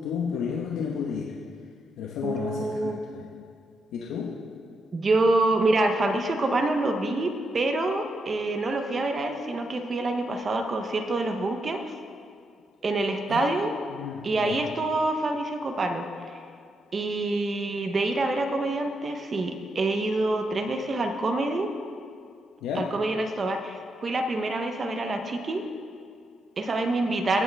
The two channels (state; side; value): normal; both; correlation 0.82